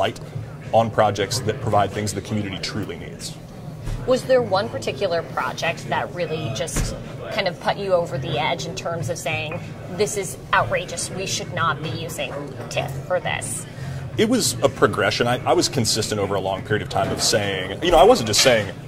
on projects that provide things the community truly needs. Was there one particular project that really just kind of put you over the edge in terms of saying, this is outrageous, we should not be using TIF for this? It was a progression. I was consistent over a long period of time of saying, I wasn't just saying,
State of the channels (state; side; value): identical; both; correlation 1.00